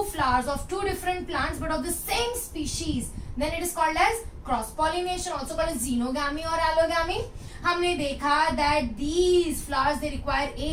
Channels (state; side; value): identical; both; correlation 1.00